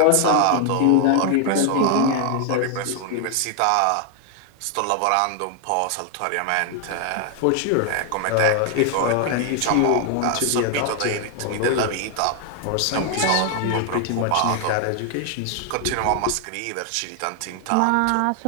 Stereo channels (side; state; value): both; different; correlation 0.00